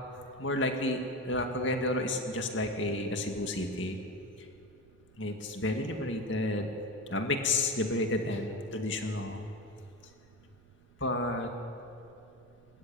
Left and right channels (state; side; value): noise; right; rumble, 26 dB below the sound